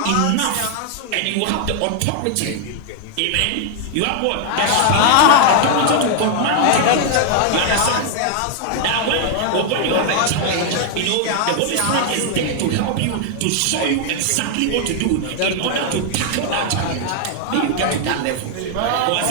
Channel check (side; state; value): both; different; correlation 0.00